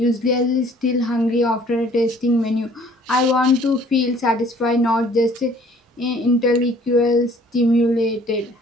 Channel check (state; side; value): normal; both; correlation 0.56